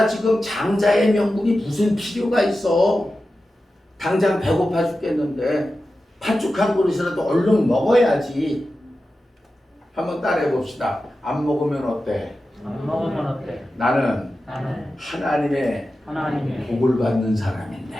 지금 장자의 명분이 무슨 필요가 있어. 당장 배고파 죽겠는데 팥죽 한 그릇이라도 얼른 먹어야지. 한번 따라해 봅시다. 안 먹으면 어때? 안 먹으면 어때? 나는 하나님의 복을 받는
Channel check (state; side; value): normal; both; correlation 0.93